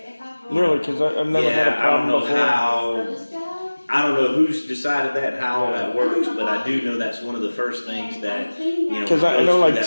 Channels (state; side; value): inverted; both; correlation -1.00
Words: Really? Because I've never had a problem before. I don't know who's decided that, how that works, but I do know that's one of the first things that, Because I know, like,